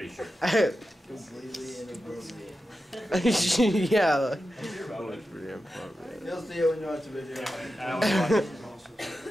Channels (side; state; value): both; normal; correlation 0.91